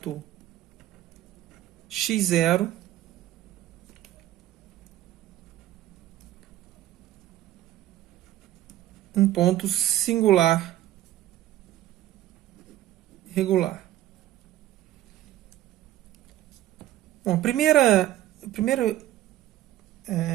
x0 um ponto singular regular. Bom, a primeira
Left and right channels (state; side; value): quieter; left; 13.9 dB